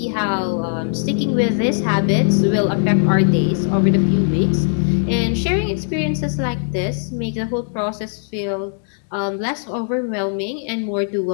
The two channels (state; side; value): silent; right; digital silence